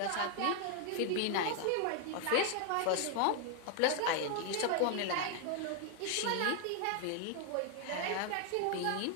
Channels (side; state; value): both; different; correlation 0.00